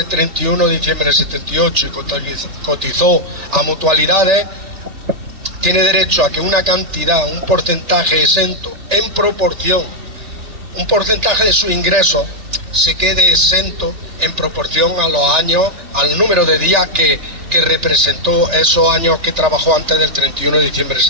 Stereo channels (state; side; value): late; left; 3.4 ms